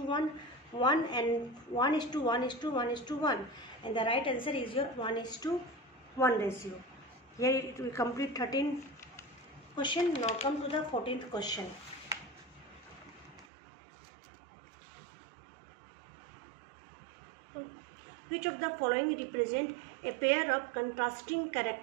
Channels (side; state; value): left; drops out; at 13.5 s